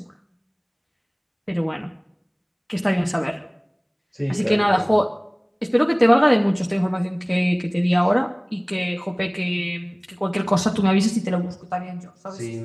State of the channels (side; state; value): both; identical; correlation 1.00